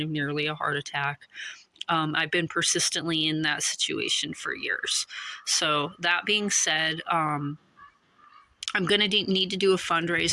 of nearly a heart attack. I've been persistently in that situation for years. So, that being said, I'm going to need to do a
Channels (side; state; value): both; identical; correlation 1.00